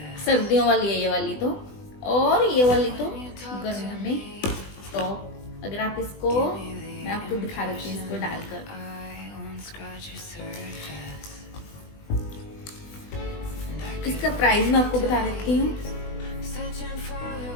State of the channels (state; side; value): late; right; 20 ms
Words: सर्दियों वाली है ये वाली तो. और ये वाली तो गर्मियों में टॉप. अगर आप इसको, मैं आपको दिखा देती हूँ इसको डालकर. इसका प्राइस मैं आपको बता देती हूँ.